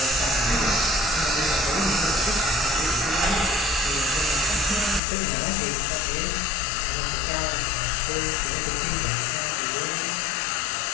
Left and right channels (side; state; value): right; drops out; at 5.0 s